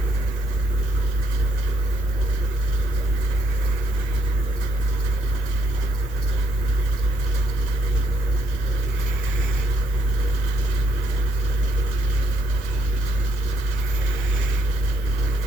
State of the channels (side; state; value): both; normal; correlation 0.73